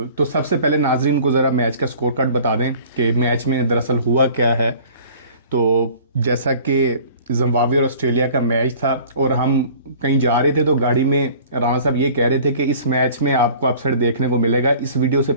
तो सबसे पहले नाजरीन को ज़रा मैच का स्कोर कार्ड बता दें कि मैच में दरअसल हुआ क्या है। तो जैसा कि जिम्बाब्वे और ऑस्ट्रेलिया का मैच था और हम कहीं जा रहे थे तो गाड़ी में राणा साहब ये कह रहे थे कि इस मैच में आपको अपसेट देखने को मिलेगा। इस वीडियो से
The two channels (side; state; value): both; inverted; correlation -0.48